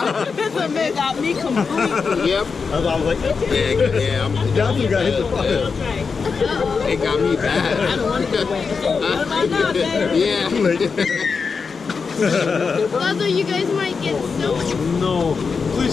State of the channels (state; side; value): quieter; right; 5.2 dB